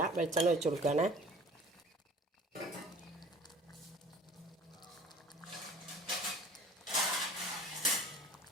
വെളിച്ചെണ്ണ ഒഴിച്ചു കൊടുക്കുകയാണ്.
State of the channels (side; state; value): both; normal; correlation 0.47